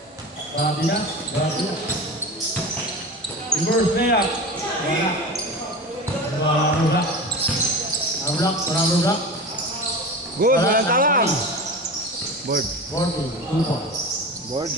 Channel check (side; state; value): both; normal; correlation 0.30